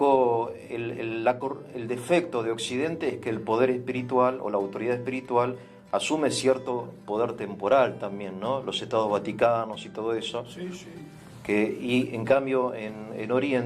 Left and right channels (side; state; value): both; identical; correlation 1.00